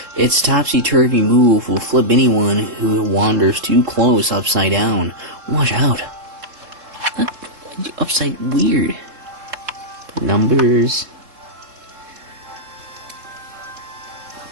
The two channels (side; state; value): left; late; 3.7 ms